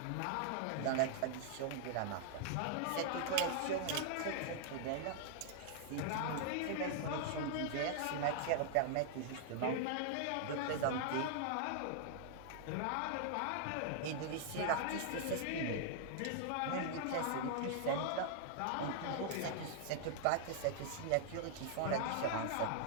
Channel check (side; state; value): both; different; correlation -0.01